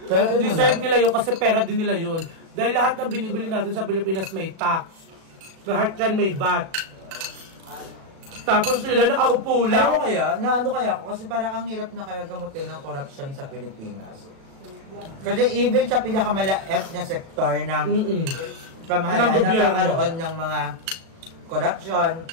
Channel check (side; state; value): left; late; 37 ms